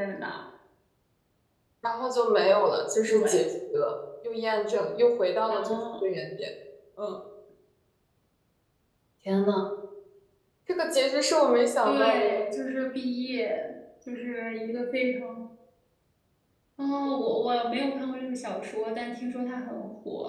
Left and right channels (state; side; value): identical; both; correlation 1.00